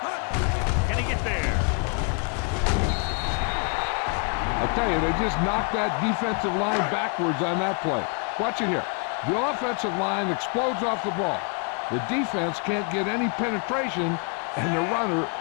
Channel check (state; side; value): quieter; right; 38.7 dB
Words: Can he get there? I'll tell you, they just knocked that defensive line backwards on that play. Watch it here. The offensive line explodes off the ball. The defense can't get any penetration, and the runner